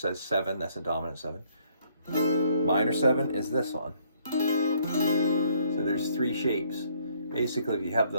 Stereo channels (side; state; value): both; inverted; correlation -0.66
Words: 7, that's a dominant 7. Minor 7 is this one. So there's 3 shapes. Basically, if you have